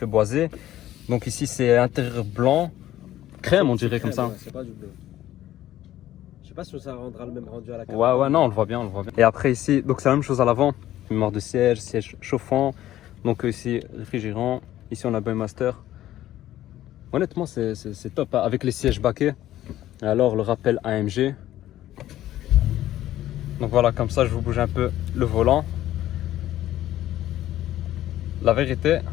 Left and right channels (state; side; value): quieter; right; 13.6 dB